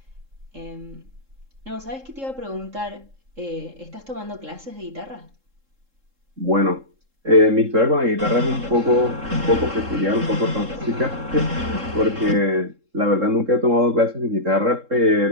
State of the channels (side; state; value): left; late; 3.7 ms